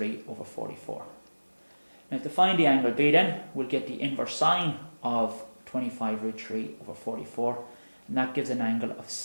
over 44. Now to find the angle B then, we'll get the inverse sine of 25 root 3 over 44, and that gives an angle of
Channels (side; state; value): both; inverted; correlation -1.00